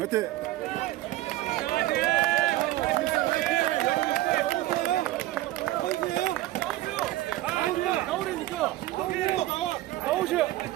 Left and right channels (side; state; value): left; quieter; 16.1 dB